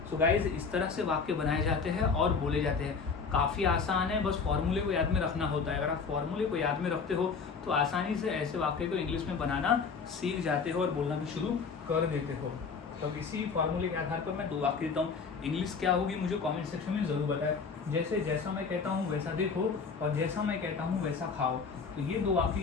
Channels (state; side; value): quieter; right; 5.3 dB